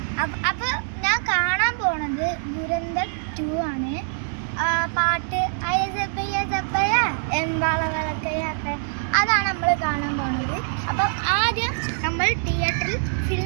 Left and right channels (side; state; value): left; silent; digital silence